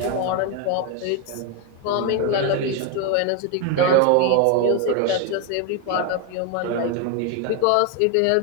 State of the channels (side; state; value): both; different; correlation 0.01